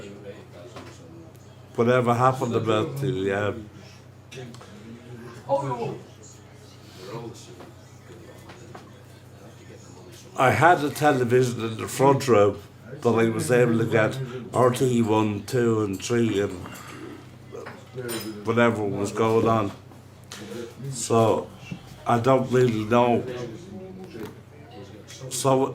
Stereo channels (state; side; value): identical; both; correlation 1.00